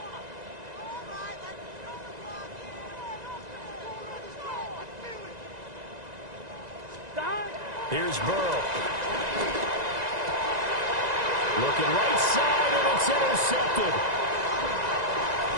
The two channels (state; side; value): late; left; 1.9 ms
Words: Here's Burrow. Looking right side, and it's intercepted.